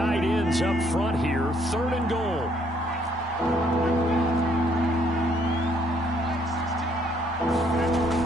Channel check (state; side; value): normal; both; correlation 0.67